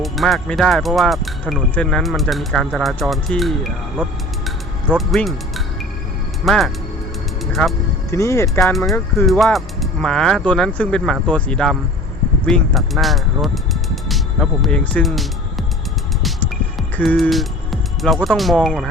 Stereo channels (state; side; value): normal; both; correlation 0.43